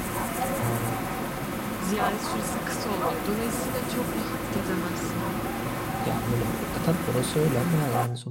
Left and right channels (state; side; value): identical; both; correlation 1.00